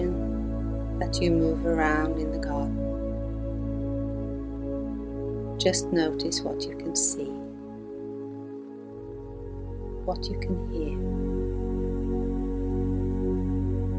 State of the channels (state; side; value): identical; both; correlation 1.00